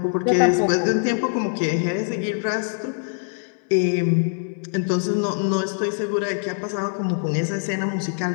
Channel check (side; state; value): right; silent; 63 dB below the other